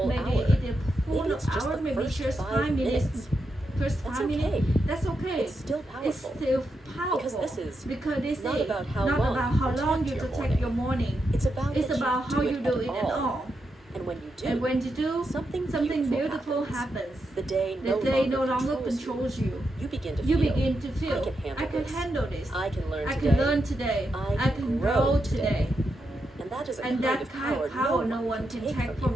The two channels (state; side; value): normal; both; correlation 0.85